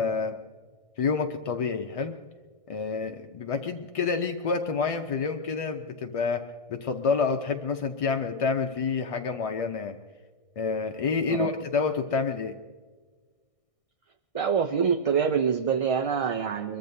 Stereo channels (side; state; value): right; late; 1.6 ms